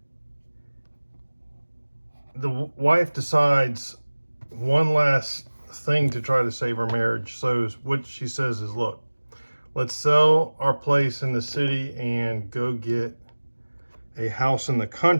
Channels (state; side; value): inverted; both; correlation -1.00